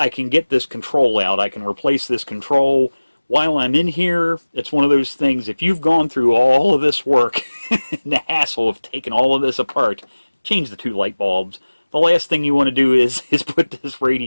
can get this control out. I can replace this control. While I'm in here, it's one of those things, if you've gone through all of this work, and the hassle of taking all of this apart, change the two light bulbs. The last thing you want to do is put this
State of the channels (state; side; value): inverted; both; correlation -1.00